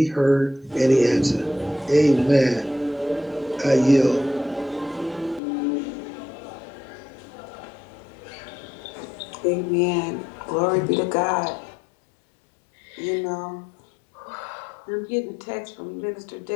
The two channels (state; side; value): drops out; right; at 5.4 s